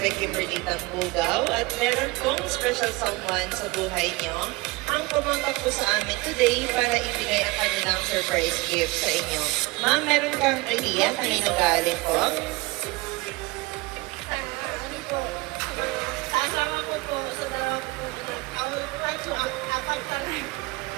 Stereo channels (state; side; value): quieter; left; 23.0 dB